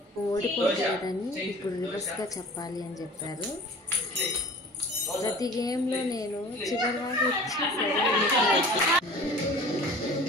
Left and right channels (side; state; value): both; normal; correlation 0.43